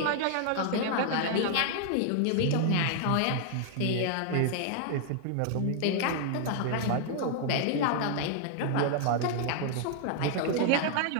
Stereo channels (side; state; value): both; different; correlation 0.00